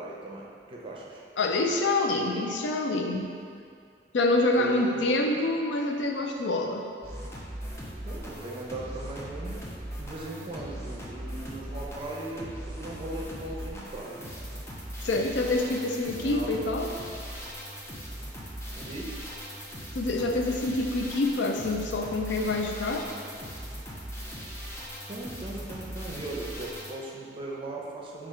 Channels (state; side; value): normal; both; correlation 0.32